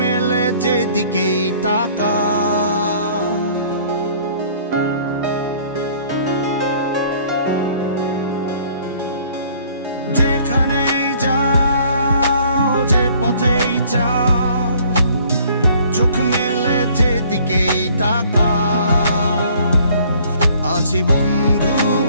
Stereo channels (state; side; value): inverted; both; correlation -0.57